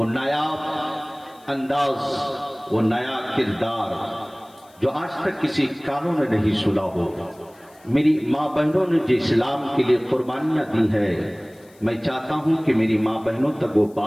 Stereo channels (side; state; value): left; noise; hiss, 29 dB below the sound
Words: نایاب انداز، وہ نیا کردار جو آج تک کسی کانوں نے نہیں سنا ہو، میری ماں بہنوں نے جو اسلام کے لیے قربانیاں دی ہے، میں چاہتا ہوں کہ میری ماں بہنوں تک وہ